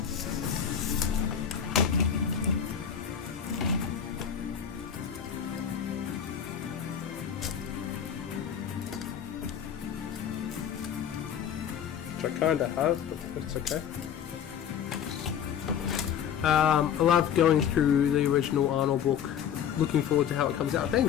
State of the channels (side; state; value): right; quieter; 8.5 dB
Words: Which I kinda have, but it's okay. I love going through the original Arnold book. Looking forward to how it comes out.